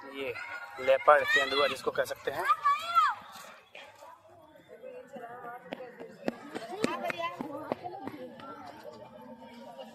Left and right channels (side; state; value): both; identical; correlation 1.00